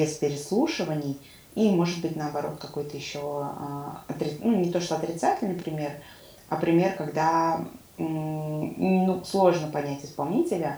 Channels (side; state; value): both; identical; correlation 1.00